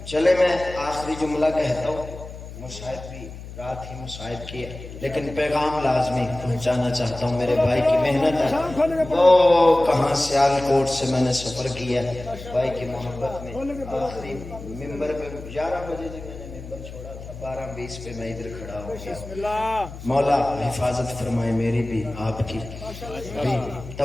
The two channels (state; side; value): noise; left; hum, 13 dB below the sound